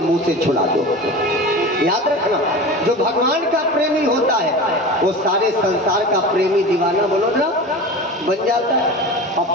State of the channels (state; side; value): normal; both; correlation 0.32